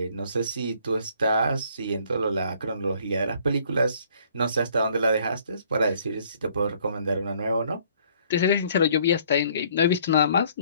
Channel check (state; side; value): inverted; both; correlation -0.61